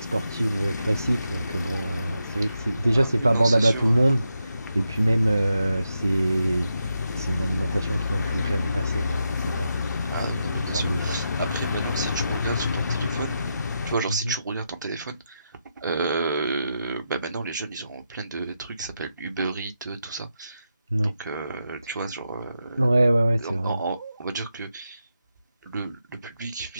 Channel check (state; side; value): inverted; both; correlation -0.85